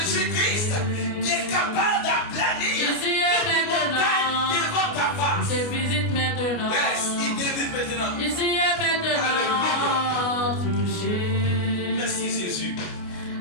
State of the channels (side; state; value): right; late; 29 ms